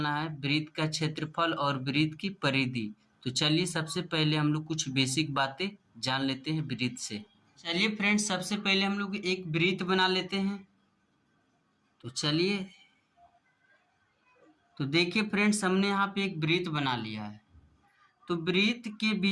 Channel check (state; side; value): identical; both; correlation 1.00